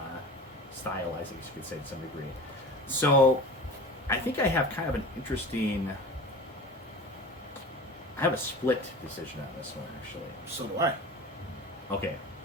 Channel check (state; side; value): normal; both; correlation 0.35